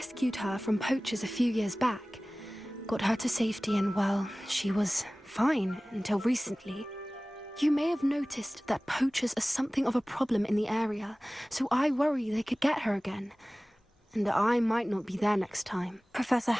her from poachers a few years back. Got her to safety and, well, she was fine until recently. You may have noticed that poachers are something of a problem in the area, so I worry they could get her again. And I might not be there next time. Professor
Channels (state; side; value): normal; both; correlation 0.98